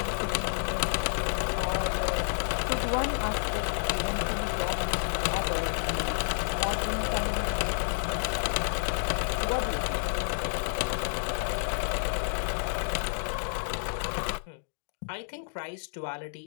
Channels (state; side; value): silent; right; digital silence